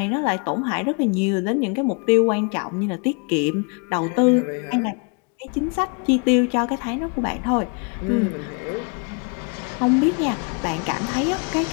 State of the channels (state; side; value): quieter; right; 35.8 dB